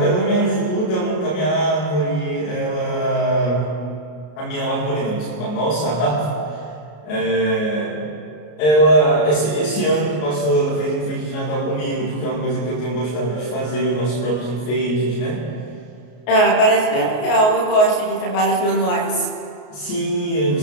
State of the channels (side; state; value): right; late; 33 ms